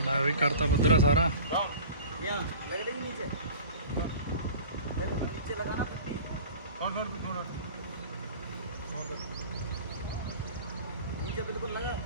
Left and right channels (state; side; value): inverted; both; correlation -0.40